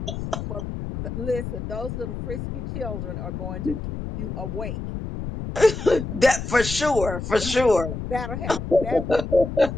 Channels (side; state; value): left; noise; rumble, 6 dB below the sound